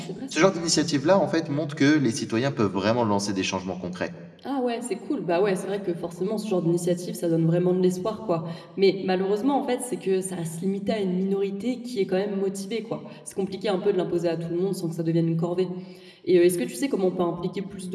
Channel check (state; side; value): identical; both; correlation 1.00